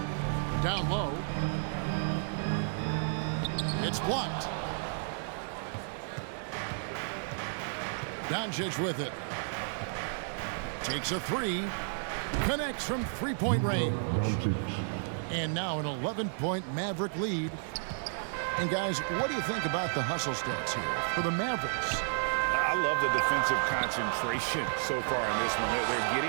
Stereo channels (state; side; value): silent; left; digital silence